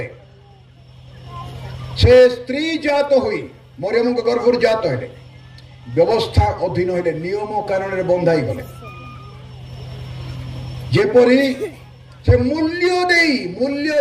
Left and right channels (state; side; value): identical; both; correlation 1.00